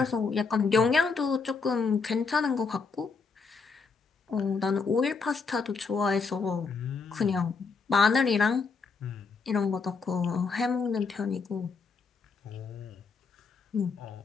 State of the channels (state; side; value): quieter; right; 4.9 dB